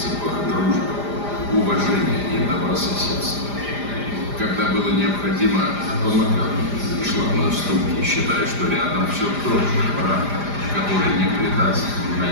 дружбы, уважения и добрососедства. Когда было необходимо, помогала, шла на уступки, считая, что рядом все тот же брат, который не предаст, а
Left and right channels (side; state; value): left; late; 4.9 ms